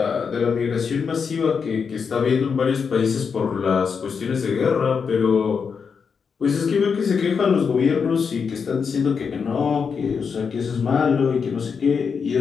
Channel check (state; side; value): quieter; right; 6.0 dB